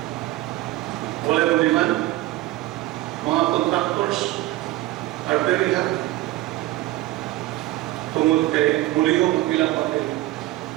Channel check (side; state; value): left; quieter; 17.1 dB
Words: Wala yung demand. Mga contractors are very happy. Tungod kay mulihong ang ilang papel.